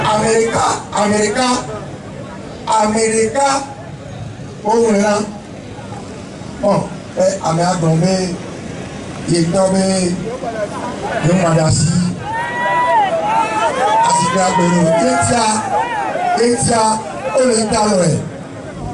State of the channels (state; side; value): identical; both; correlation 1.00